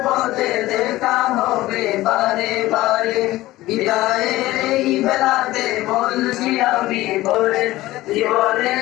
পথে দেখা হবে বারে বারে। বিদায়ের এই বেলাতে বলছি আমি তোরে, জীবনে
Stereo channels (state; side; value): quieter; right; 17.1 dB